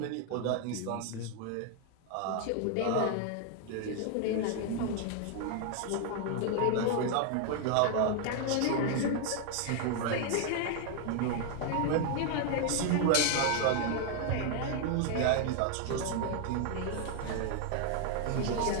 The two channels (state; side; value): different; both; correlation 0.00